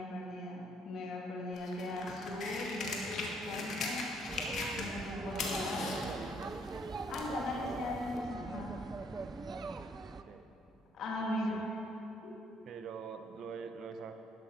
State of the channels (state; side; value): normal; both; correlation 0.67